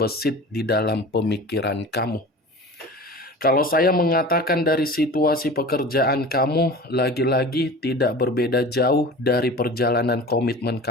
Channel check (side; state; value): both; normal; correlation 0.37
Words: di dalam pemikiran kamu. Kalau saya mengatakan dari situasi pekerjaan kamu, lagi-lagi tidak berbeda jauh dari perjalanan komitmen